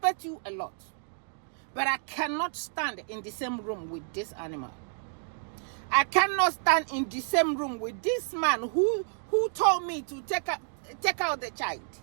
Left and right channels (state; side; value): silent; left; digital silence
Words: you a lot, but I cannot stand in the same room with this animal. I cannot stand in the same room with this man who told me to take out the child.